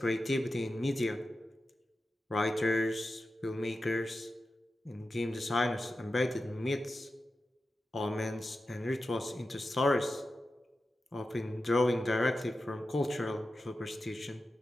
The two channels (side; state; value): both; normal; correlation 0.92